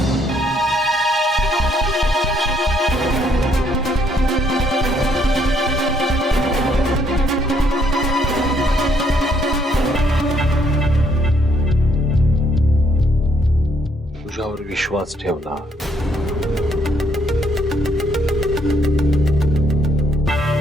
तुझ्यावर विश्वास ठेवला,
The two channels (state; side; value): normal; both; correlation 0.70